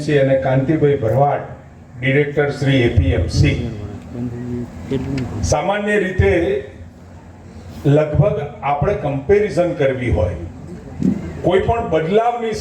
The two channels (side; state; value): both; identical; correlation 1.00